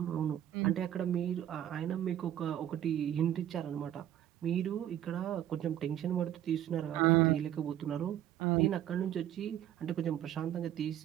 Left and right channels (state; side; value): quieter; left; 11.6 dB